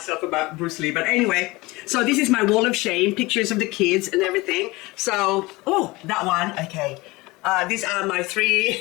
about Bruce Lee. But anyway, so this is my wall of shame, pictures of the kids and everything. So, that one, okay. These are my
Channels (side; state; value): right; quieter; 22.2 dB